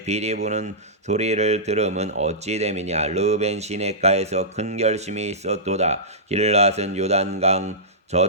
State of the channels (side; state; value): both; normal; correlation -0.17